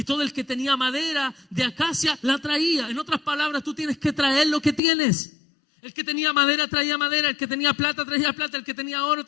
todo el que tenía madera de acacia, la traía. En otras palabras, tú tienes que traer lo que tienes. El que tenía madera traía madera, el que tenía plata traía plata, el que tenía oro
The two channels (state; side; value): drops out; right; at 4.8 s